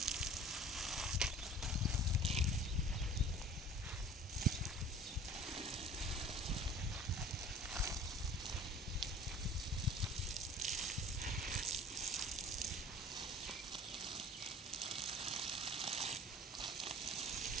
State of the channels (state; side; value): normal; both; correlation 0.45